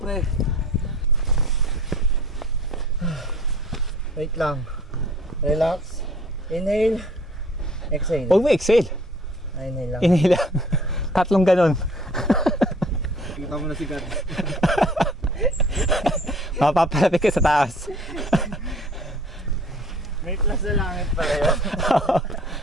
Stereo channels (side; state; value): both; normal; correlation 0.52